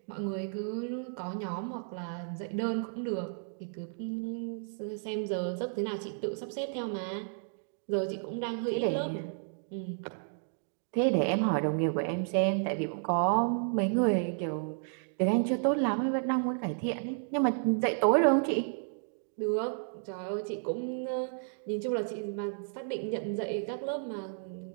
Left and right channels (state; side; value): silent; left; digital silence